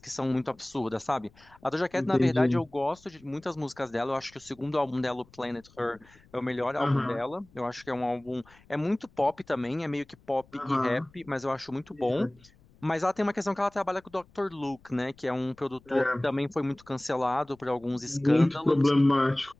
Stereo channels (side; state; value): left; noise; rumble, 28 dB below the sound